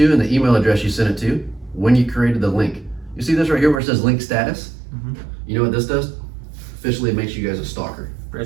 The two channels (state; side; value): drops out; left; at 3.8 s